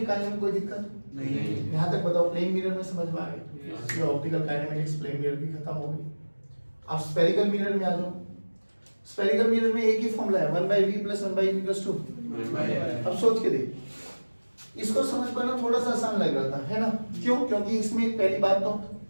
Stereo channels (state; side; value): inverted; both; correlation -1.00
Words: में कोई दिक्कत नहीं। यहां तक बताओ, प्लेन मिरर में समझ में आ गया, ये ऑप्टिकल काइनेमेटिक्स प्लेन मिरर की खत्म हो गई। अब स्फेरिकल मिरर में आ जाओ, स्फेरिकल मिरर में एक ही फॉर्मूला है, 1/v + 1/e = 2। अब सोच के देख, इसको समझ पाना थोड़ा सा आसान लग रहा था, है ना, क्यों, क्योंकि इसमें पहली बात तो